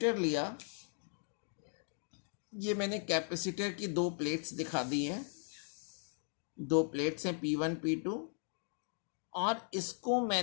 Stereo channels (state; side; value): silent; right; 53 dB below the other